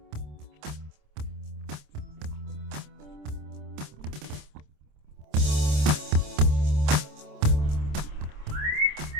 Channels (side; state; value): left; late; 27 ms